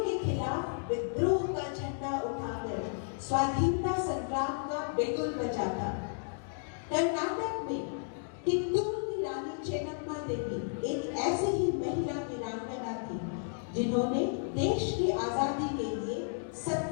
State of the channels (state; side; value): silent; right; digital silence